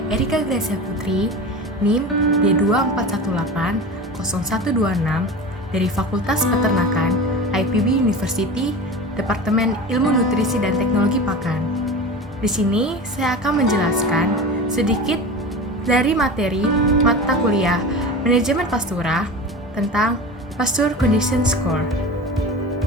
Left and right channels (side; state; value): both; normal; correlation 0.31